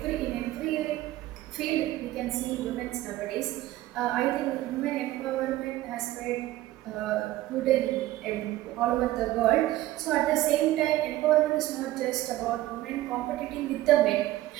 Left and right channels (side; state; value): left; quieter; 15.8 dB